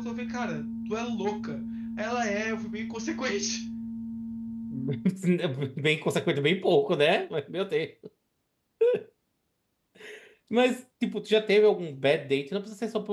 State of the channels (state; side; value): identical; both; correlation 1.00